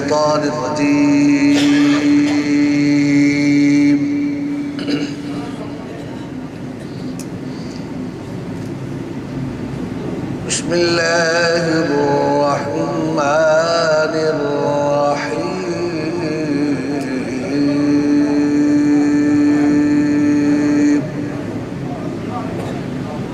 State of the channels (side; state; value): both; identical; correlation 1.00